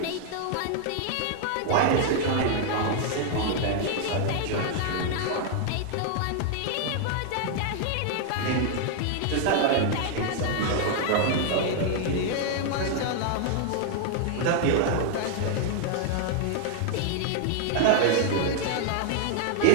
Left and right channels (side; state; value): both; different; correlation 0.00